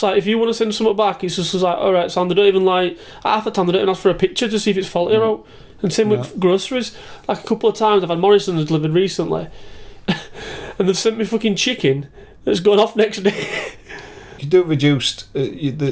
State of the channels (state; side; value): identical; both; correlation 1.00